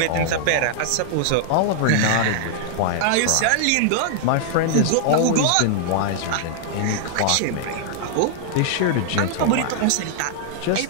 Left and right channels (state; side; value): different; both; correlation -0.01